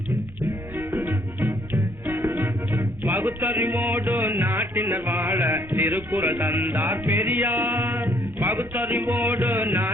பகுத்தறிவோடு நாட்டினர் வாழ திருக்குறள் தந்தார் பெரியார். பகுத்தறிவோடு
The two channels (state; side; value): normal; both; correlation 0.65